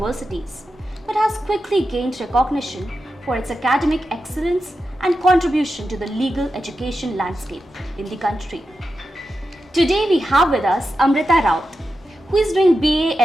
but has quickly gained recognition for its academic excellence and contribution to the legal education landscape in the country. Today we have with us Amrita Raut, who is doing BA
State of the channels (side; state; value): both; normal; correlation 0.90